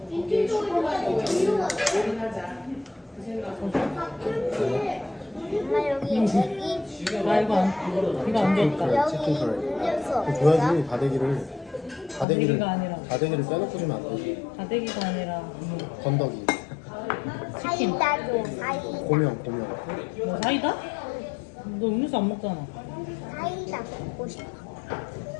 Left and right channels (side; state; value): right; drops out; at 12.2 s